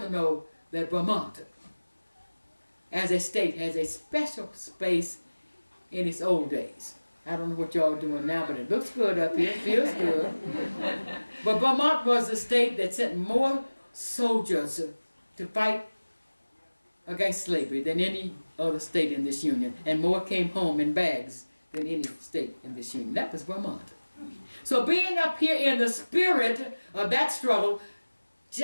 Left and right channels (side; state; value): both; inverted; correlation -1.00